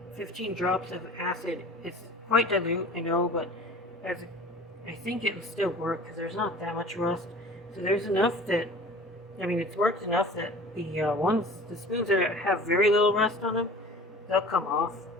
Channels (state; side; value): normal; both; correlation 0.42